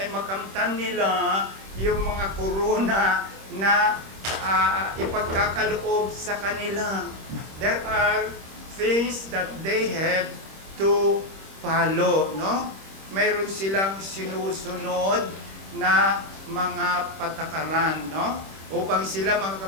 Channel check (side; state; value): left; late; 26 ms